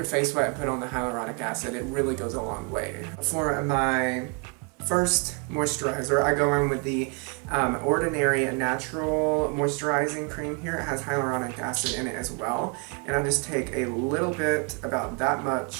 face wet and put on the hyaluronic acid, it really goes a long way. For my first moisturizer, I go in with the Ordinary Natural Moisturizing Cream here. It has hyaluronic acid in it as well. And I just take a little bit, about that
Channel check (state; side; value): quieter; left; 32.6 dB